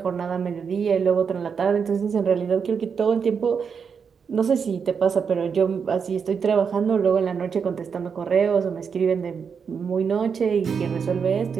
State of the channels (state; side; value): quieter; left; 6.3 dB